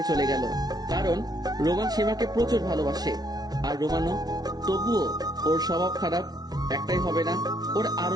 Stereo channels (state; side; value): late; left; 0.19 ms